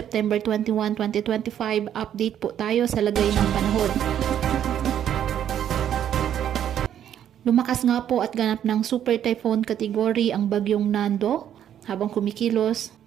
21, 2025. Update po tayo sa lagay ng panahon. Lumakas nga po at ganap ng super typhoon category ang bagyong Nando habang kumikilos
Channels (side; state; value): left; quieter; 10.1 dB